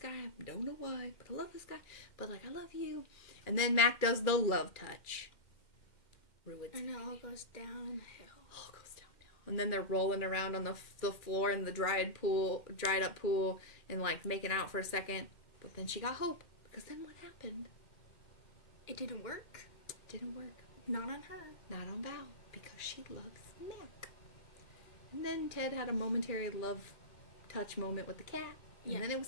I don't know why, but I love this guy. But, like, I love you. And then Mac does the love touch. Ruins and it all goes downhill. All goes downhill. And then they're rolling around on the floor in the dried up pool, and, like, making out for a second. But then she got hope. Because then what happened? It didn't work. Didn't work. Not on her. Not on Val. Because she loves Mac. And then Ted had a momentary love touch moment with the cat. And then it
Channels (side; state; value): right; late; 2.1 ms